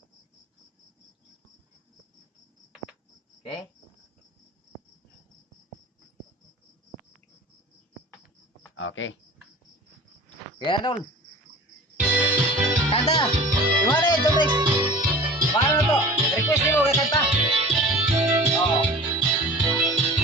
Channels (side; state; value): both; normal; correlation 0.40